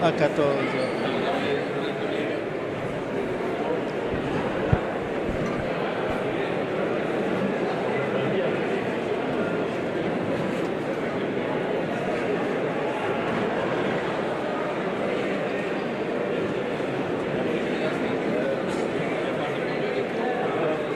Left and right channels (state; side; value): identical; both; correlation 1.00